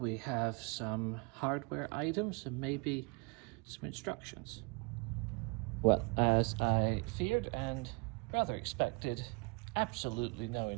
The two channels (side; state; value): left; quieter; 29.9 dB